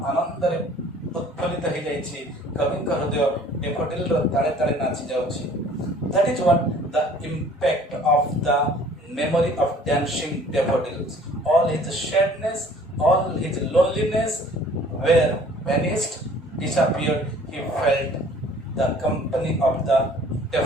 ଆନନ୍ଦରେ ଉତ୍ଫୁଲ୍ଲିତ ହୋଇଯାଇଛି, କବିଙ୍କ ହୃଦୟ daffodilର ତାଳେ ତାଳେ ନାଚି ଯାଉଛି। That is what the impact of the memory of dancing daffodils. All his sadness, all his loneliness were vanished, disappeared. He felt the company of the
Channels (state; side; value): normal; both; correlation 0.52